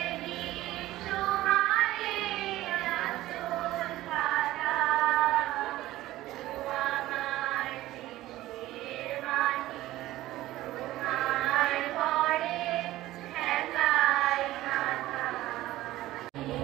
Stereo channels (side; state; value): left; quieter; 16.1 dB